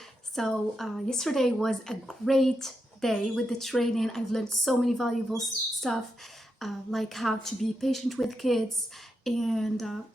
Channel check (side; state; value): both; normal; correlation 0.85